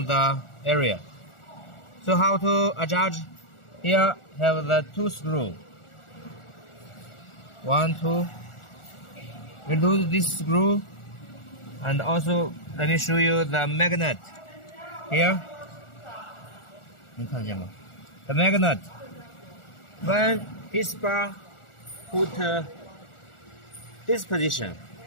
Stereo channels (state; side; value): late; right; 1.4 ms